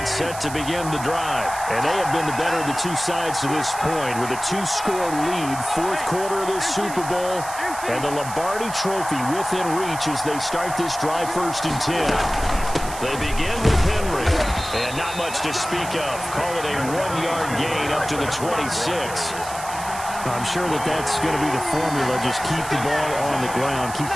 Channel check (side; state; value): right; noise; hiss, 12 dB below the sound